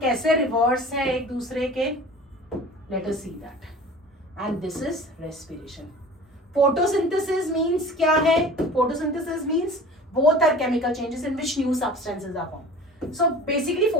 कैसे रिवर्स है एक दूसरे के, let us see that. And this is respiration. Photosynthesis means क्या है, photosynthesis means both are chemical changes in which new substances are formed. So basically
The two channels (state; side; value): normal; both; correlation 0.41